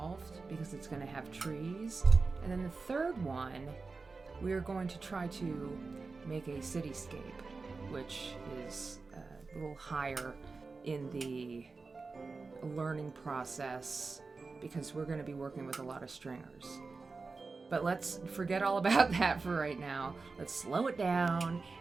because it's going to have trees, and then the third one we are going to try to make a cityscape, which is a little higher in the learning process because we're going to be working with a lot of stringers. But let's forget all about that for right now. Let's slow it down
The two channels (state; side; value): quieter; left; 4.1 dB